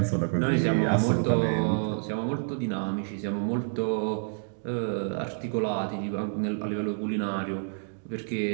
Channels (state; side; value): silent; left; digital silence